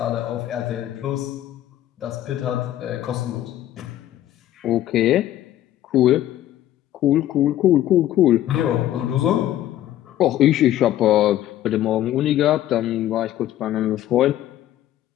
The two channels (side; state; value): right; quieter; 13.0 dB